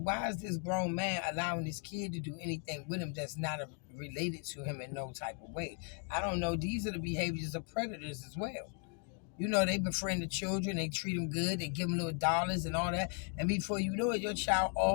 is this grown man allowing this kid to do anything with him that's not related to him in no type of way? I don't know. These are the behaviors of predators as well. You know, they befriend the children, they treat them good, they give them little dollars and all that. And before you know it, your child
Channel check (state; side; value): quieter; right; 39.2 dB